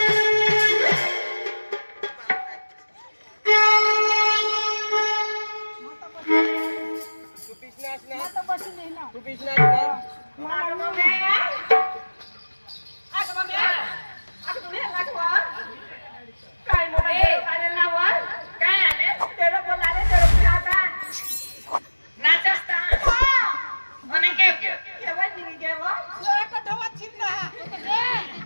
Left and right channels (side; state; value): both; inverted; correlation -1.00